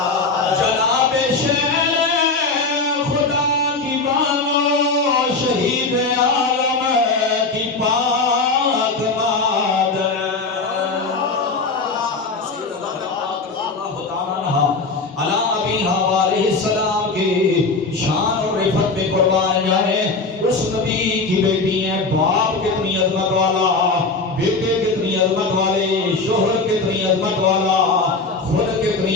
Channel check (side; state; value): right; quieter; 3.8 dB